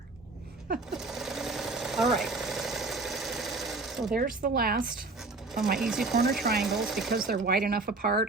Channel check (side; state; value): left; quieter; 3.5 dB